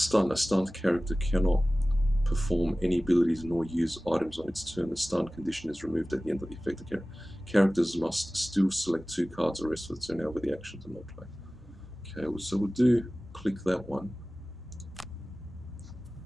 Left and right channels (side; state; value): both; normal; correlation 0.97